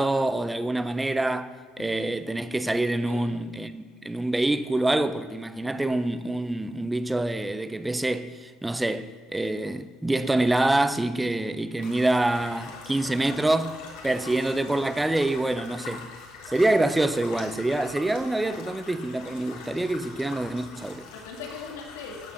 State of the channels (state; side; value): normal; both; correlation 0.94